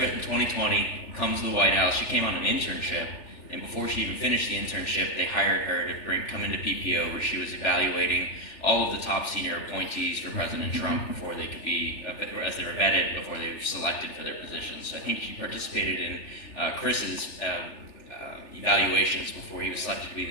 in 2020, comes to the White House. She came on an internship, and before she even finished the internship, they hired her to come into PPO, where she was evaluating all of the top senior appointees for President Trump before they could be, as they were vetted, before they were selected for their positions. So I think she participated in Chris's evaluations before he was selected to be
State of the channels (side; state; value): right; late; 3.4 ms